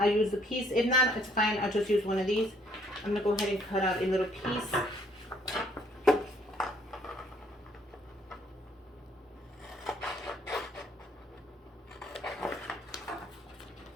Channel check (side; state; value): both; normal; correlation 0.65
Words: use the piece. If not, it's fine. I'll just use one of these. I'm gonna go ahead and cut out a little piece.